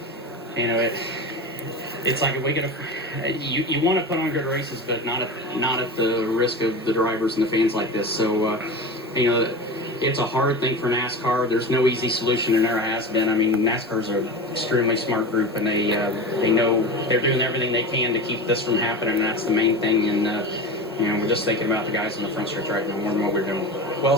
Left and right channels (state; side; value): normal; both; correlation 0.28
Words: you know, it's like if we get you want to put on good races, but not at the risk of the drivers and the fans like this. So you know, it's a hard thing for NASCAR. There's no easy solution, and never has been. I mean, NASCAR's an extremely smart group, and they know they're doing everything they can to keep this from happening, and that's the main thing. And you know, we're just thinking about the guys in the front stretch right now more than what we're doing. Well